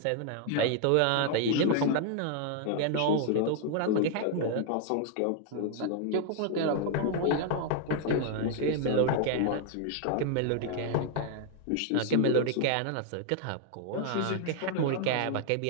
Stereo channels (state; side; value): different; both; correlation 0.00